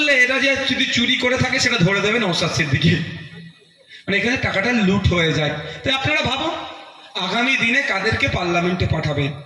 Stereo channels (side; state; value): both; identical; correlation 1.00